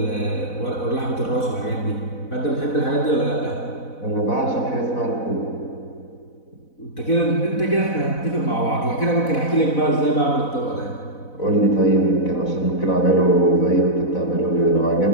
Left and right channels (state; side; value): late; right; 4.0 ms